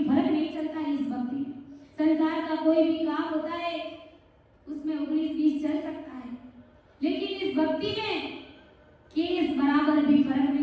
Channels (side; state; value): both; identical; correlation 1.00